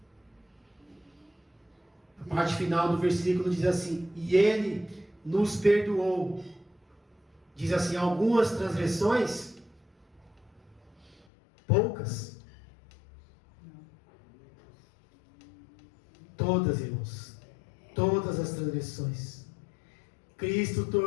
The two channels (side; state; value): right; drops out; at 11.2 s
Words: A parte final do versículo diz assim: e Ele nos perdoou. Diz assim: algumas transgressões, poucas. Todas, irmãos, todas as transgressões. Cristo